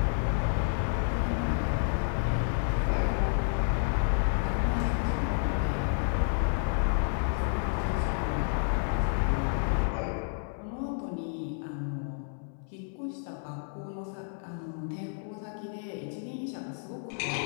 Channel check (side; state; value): right; silent; 58 dB below the other